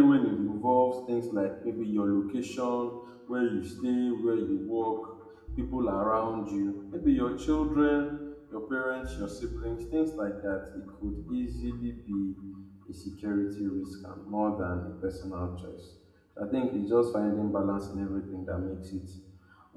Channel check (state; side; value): identical; both; correlation 1.00